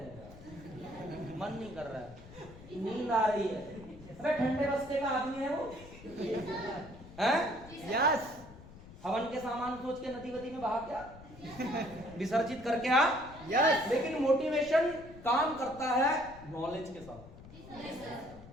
मन नहीं कर रहा है, नींद आ रही है, अबे ठंडे बस्ते का आदमी है वो, हैं? यस। हवन के सामान सोच के नदी वदी में बहा क्या विसर्जित करके आ। यस। लेकिन मोटिवेशन काम करता है नॉलेज के साथ,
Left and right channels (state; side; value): noise; left; rumble, 18 dB below the sound